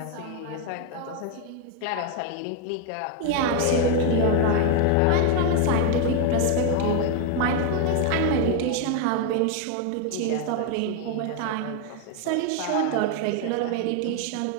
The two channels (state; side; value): different; both; correlation 0.01